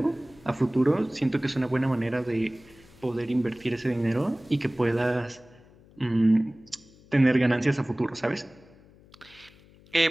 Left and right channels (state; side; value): noise; left; hum, 26 dB below the sound